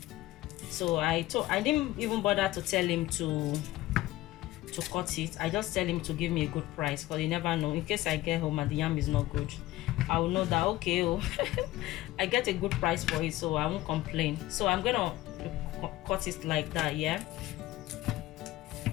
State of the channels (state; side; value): quieter; right; 16.8 dB